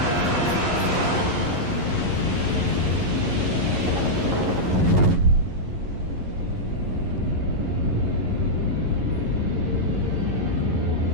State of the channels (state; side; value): late; left; 11 ms